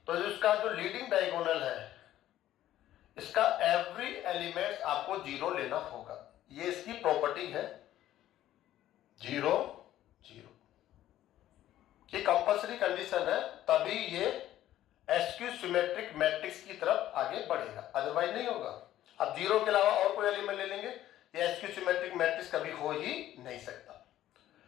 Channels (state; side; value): quieter; right; 13.1 dB